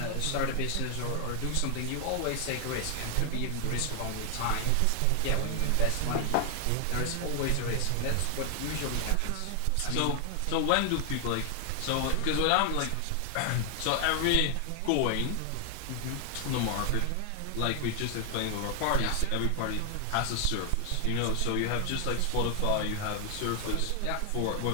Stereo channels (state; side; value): different; both; correlation 0.00